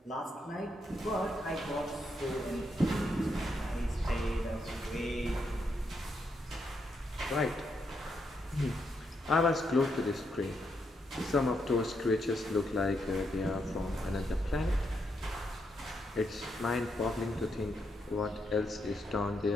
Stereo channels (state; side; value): normal; both; correlation 0.80